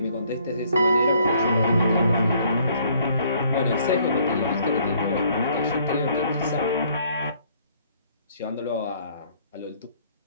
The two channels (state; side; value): inverted; both; correlation -0.63